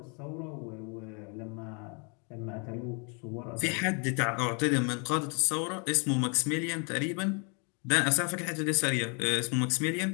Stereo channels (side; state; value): right; quieter; 35.9 dB